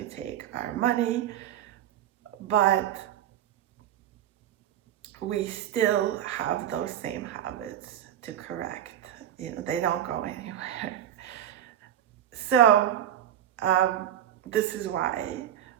take our money, but we still have those same habits to correct. They don't go anywhere. So this is why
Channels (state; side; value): quieter; left; 10.9 dB